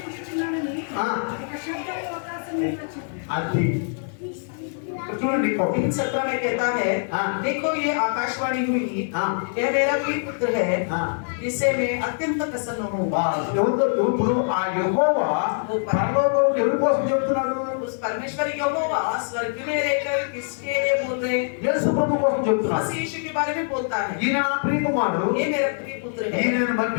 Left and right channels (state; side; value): silent; right; digital silence